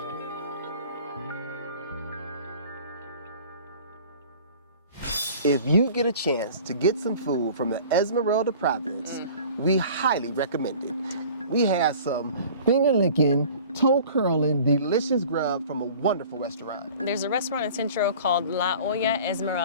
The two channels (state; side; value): inverted; both; correlation -0.45